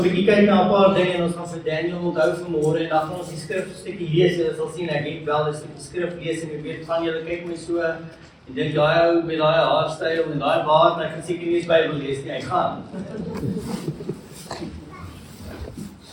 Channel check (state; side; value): identical; both; correlation 1.00